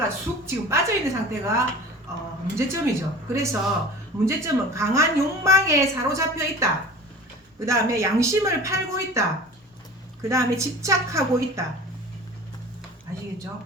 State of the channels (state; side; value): normal; both; correlation 0.39